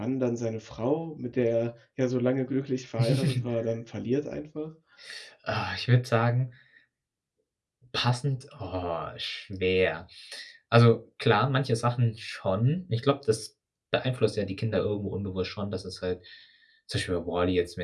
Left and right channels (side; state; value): both; identical; correlation 1.00